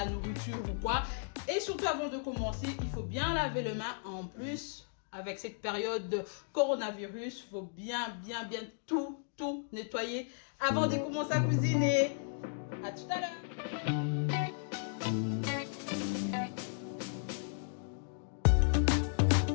nourriture ou quoi. Et surtout, avant de commencer, il faut bien laver les mains. En plus, avec cette période de coronavirus, il faut bien tout nettoyer avant de commencer à cuisiner. À tout à l'heure.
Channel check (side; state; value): right; silent; digital silence